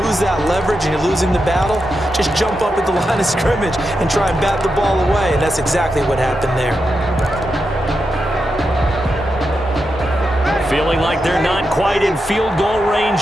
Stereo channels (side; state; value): both; normal; correlation 0.87